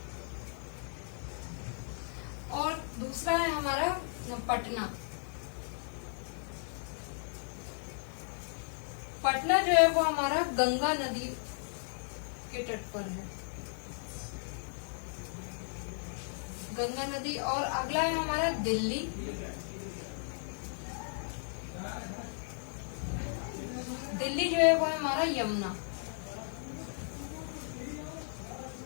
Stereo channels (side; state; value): right; silent; digital silence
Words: और दूसरा है हमारा पटना। पटना जो है वो हमारा गंगा नदी के तट पर है, गंगा नदी। और अगला है हमारा दिल्ली। दिल्ली जो है वो है हमारा यमुना।